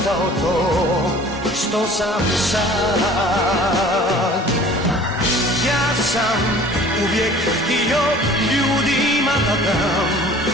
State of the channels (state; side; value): normal; both; correlation 0.47